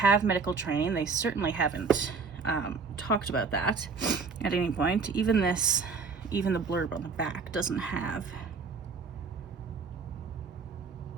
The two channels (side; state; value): left; quieter; 4.9 dB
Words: medical training, they certainly haven't talked about that at any point. Even the blurb on the back doesn't have.